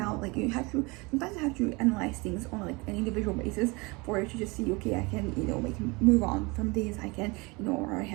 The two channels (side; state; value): left; quieter; 26.4 dB